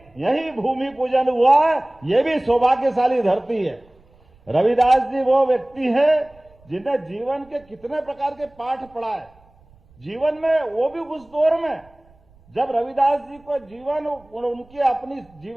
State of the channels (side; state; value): right; noise; rumble, 29 dB below the sound